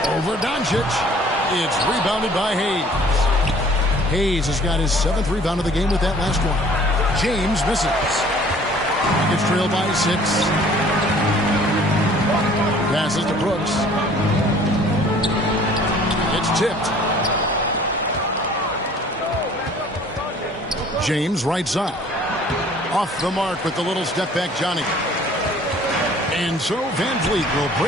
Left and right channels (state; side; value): normal; both; correlation 0.53